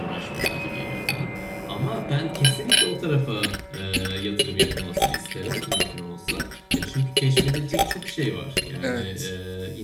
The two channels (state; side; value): identical; both; correlation 1.00